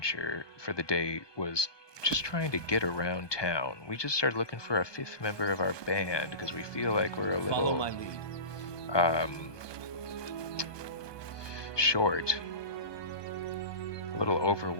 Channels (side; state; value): right; late; 1.2 ms